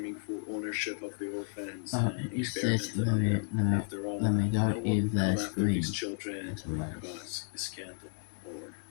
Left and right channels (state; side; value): silent; right; 56 dB below the other